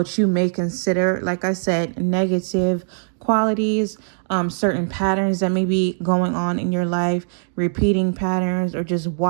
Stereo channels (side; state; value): left; silent; digital silence